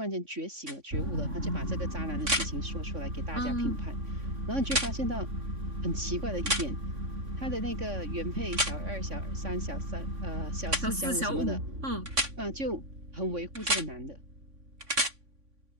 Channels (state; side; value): late; left; 3.5 ms